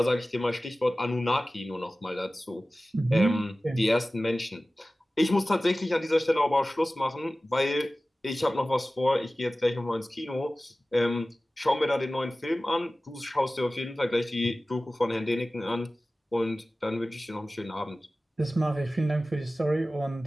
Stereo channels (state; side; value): normal; both; correlation 0.96